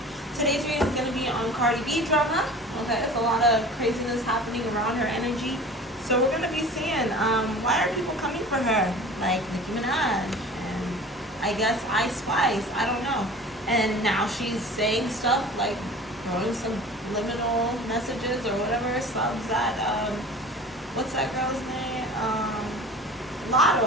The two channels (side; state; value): both; normal; correlation 0.40